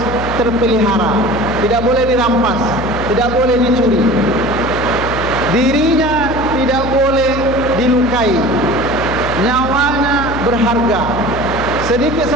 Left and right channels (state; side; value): noise; left; hum, 8 dB below the sound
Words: terpelihara, tidak boleh dirampas, tidak boleh dicuri. Dirinya tidak boleh dilukai, nyawanya berharga. Sedikit